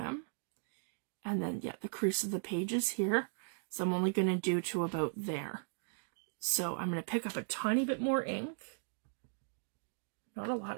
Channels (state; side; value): silent; left; digital silence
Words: And then, yeah, the crease of the page is here. So I'm only going to do to about there. So I'm going to pick up a tiny bit more ink. Not a